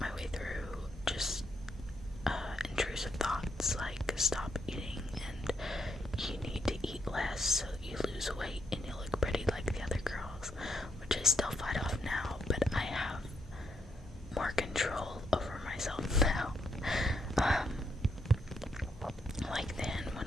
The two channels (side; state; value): both; normal; correlation 0.77